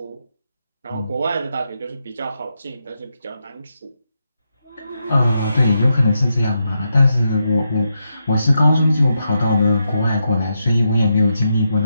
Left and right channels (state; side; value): inverted; both; correlation -0.84